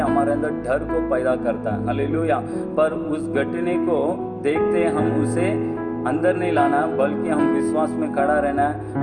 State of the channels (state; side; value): identical; both; correlation 1.00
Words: हैं, हमारे अंदर डर को पैदा करता है। हालेलुया। पर उस घटने को देखते हम उसे अंदर नहीं लाना है, बल्कि हम विश्वास में खड़ा रहना है।